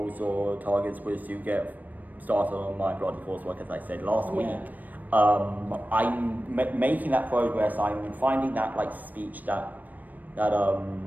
or targets was to get started on my bloody coursework, as I said last week. I'm making that progress. I'm finding that like speech that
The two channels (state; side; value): late; left; 0.084 ms